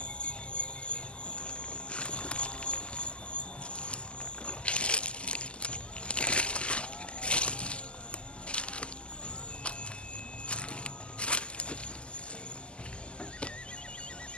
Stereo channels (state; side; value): late; right; 0.052 ms